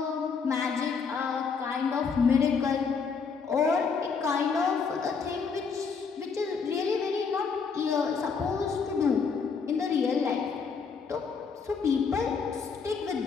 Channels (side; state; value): right; quieter; 5.5 dB